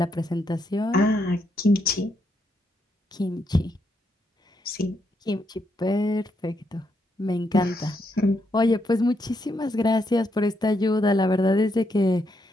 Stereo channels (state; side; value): normal; both; correlation 0.78